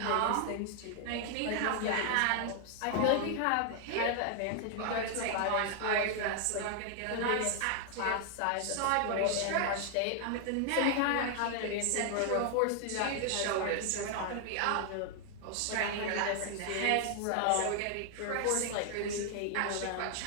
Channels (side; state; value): both; different; correlation 0.00